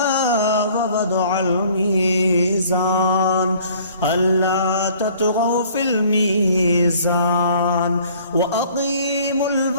ووضع الميزان ألا تطغوا في الميزان وأقيموا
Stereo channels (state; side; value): inverted; both; correlation -0.55